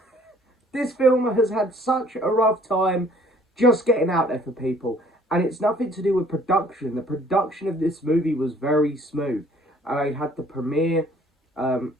this film has had such a rough time just getting out there for people, and it's nothing to do with production. The production of this movie was very smooth. I had the premiere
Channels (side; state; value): both; normal; correlation 0.58